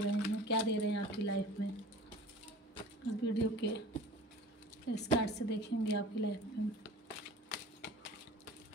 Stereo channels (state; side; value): normal; both; correlation 0.42